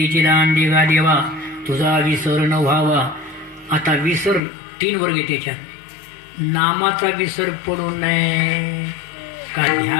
चिदान देवा देवा तुझा विसर न व्हावा. आता विसर 3 वर्ग आहे त्याच्यात. नामाचा विसर पडू नये, का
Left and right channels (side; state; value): right; drops out; at 4.4 s